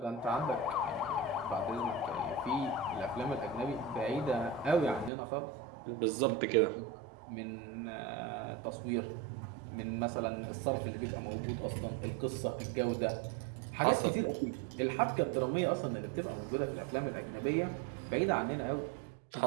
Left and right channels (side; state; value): left; drops out; at 5.1 s